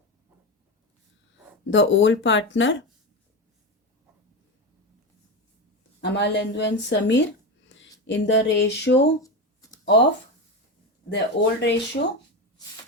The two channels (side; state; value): both; normal; correlation 0.18